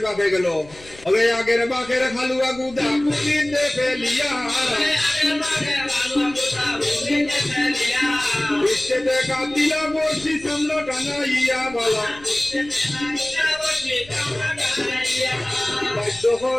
বাঘে গেল। ওরে আগের বাঘের খালুয়া গুদা পুলিতে ফেলিয়া, বৃষ্টিতে কাটিলা বসি সামনে টানাইয়া বালা।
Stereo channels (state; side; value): noise; left; rumble, 22 dB below the sound